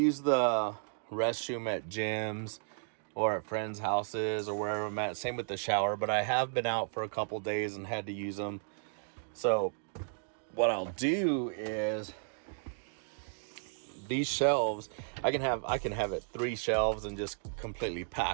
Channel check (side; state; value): left; silent; digital silence